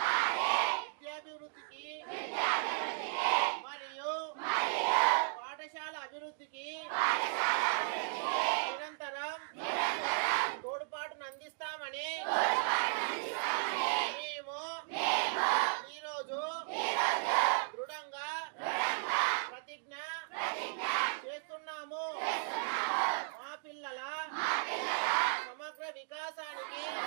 విద్యాభివృద్ధికి మరియు పాఠశాల అభివృద్ధికి నిరంతరం తోడ్పాటును అందిస్తామని మేము ఈరోజు దృఢంగా ప్రతిజ్ఞ చేస్తున్నాము. మా పిల్లల సమగ్ర వికాసానికి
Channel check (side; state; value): left; silent; digital silence